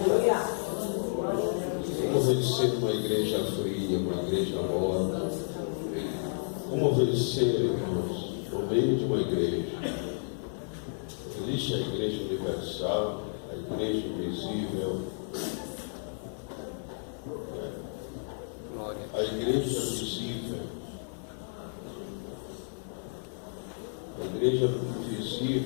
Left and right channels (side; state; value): right; silent; digital silence